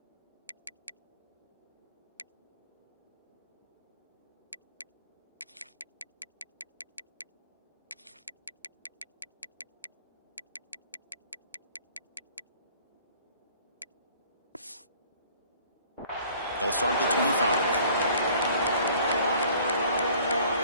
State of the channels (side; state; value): both; inverted; correlation -0.54